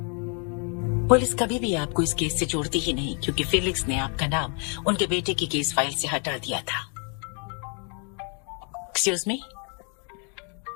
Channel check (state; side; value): quieter; right; 38.8 dB